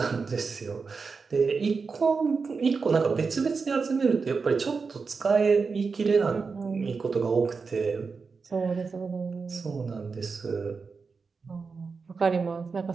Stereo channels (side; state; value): left; quieter; 4.9 dB